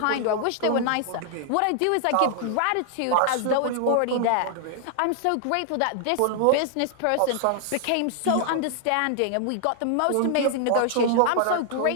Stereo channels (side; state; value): both; different; correlation -0.01